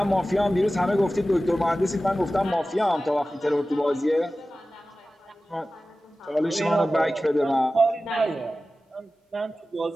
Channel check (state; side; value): normal; both; correlation 0.95